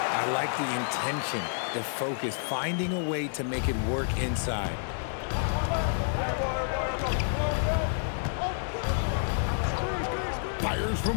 like the intention, the focus, finding a way to make it work inside. Fires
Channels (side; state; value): right; silent; digital silence